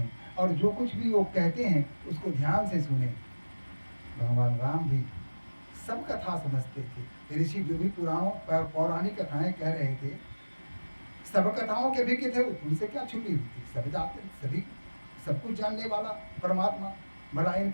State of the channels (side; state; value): both; inverted; correlation -1.00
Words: और जो कुछ भी वो कहते हैं उसको ध्यान से सुने। भगवान राम भी सब कथा समझते थे। ऋषि जो भी पुराणों पौराणिक कथाएं कह रहे थे, सब कथाओं के भी थे, उनसे क्या छुपी हुई थी? सब जानते, सभी सब कुछ जानने वाला परमात्मा भला इन